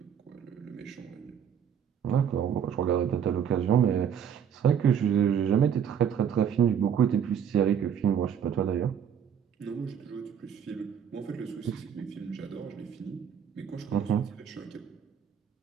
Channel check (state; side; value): quieter; left; 8.3 dB